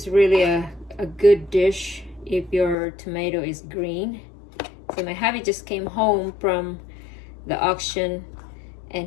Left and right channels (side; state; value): right; drops out; at 2.8 s